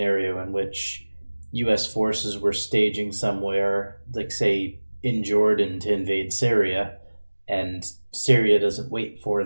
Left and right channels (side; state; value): both; inverted; correlation -1.00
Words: in which U.S. forces were staging somewhere, like say in Jordan to invade Syria, and Syria doesn't wait for